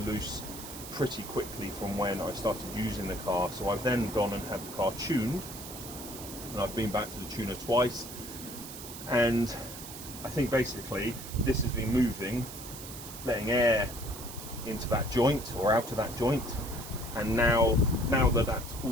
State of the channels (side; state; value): right; noise; hiss, 12 dB below the sound